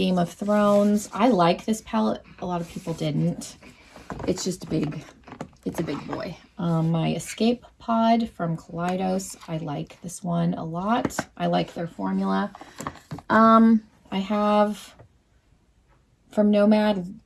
of Thrones. I like this palette. A lot of people didn't. It's just it's a big boy. My Escape Pod from Kaleidos. I like this one a lot. I like their formula. I have from Nomad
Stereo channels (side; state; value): both; identical; correlation 1.00